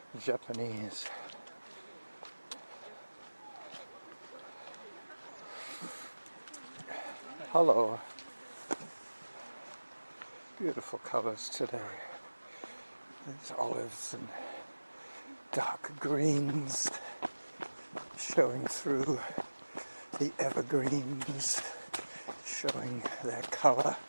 Japanese. Hello. Beautiful colors today. These olives and dark greens showing through the evergreens, showing their color,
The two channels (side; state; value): both; inverted; correlation -1.00